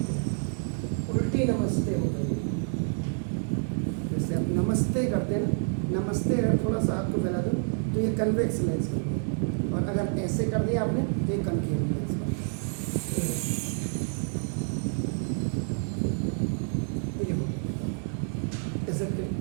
उल्टी नमस्ते हो गई, जैसे आप नमस्ते करते हैं ना, नमस्ते अगर थोड़ा सा आपको फैला दो तो ये कन्वेक्स लेंस कर दिया, और अगर ऐसे कर दिया आपने तो ये कनकेव लेंस कर दिया।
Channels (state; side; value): silent; left; 56 dB below the other